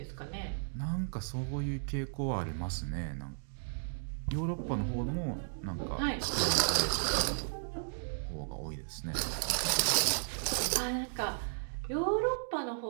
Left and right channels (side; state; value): left; silent; digital silence